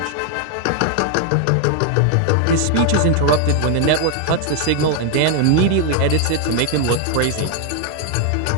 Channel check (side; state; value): both; different; correlation 0.00